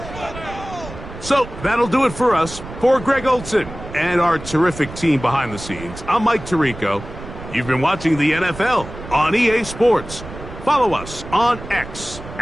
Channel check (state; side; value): noise; right; rumble, 13 dB below the sound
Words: So that'll do it for us. For Greg Olson and our terrific team behind the scenes, I'm Mike Tirico. You've been watching the NFL on EA Sports. Follow us on X